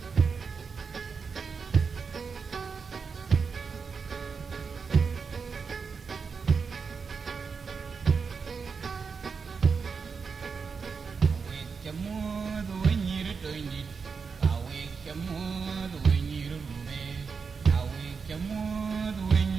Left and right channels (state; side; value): quieter; left; 5.4 dB